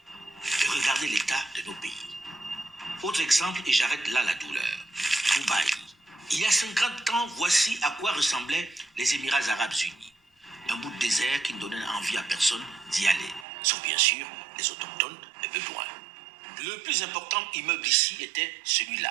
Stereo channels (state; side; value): drops out; left; at 13.5 s